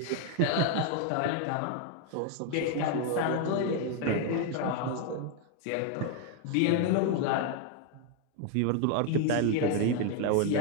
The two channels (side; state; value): both; different; correlation 0.01